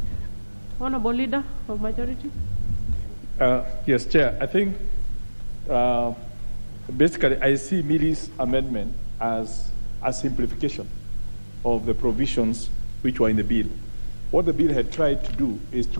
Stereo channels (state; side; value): inverted; both; correlation -1.00